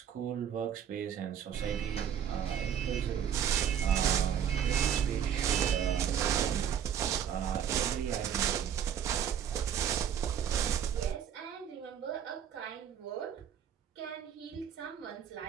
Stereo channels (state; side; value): quieter; left; 8.8 dB